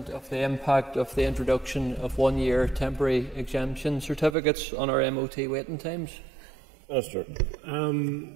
of the impact of the introduction of one-year temporary exemption certificates on our MOT waiting times. Minister.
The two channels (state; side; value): drops out; left; at 4.4 s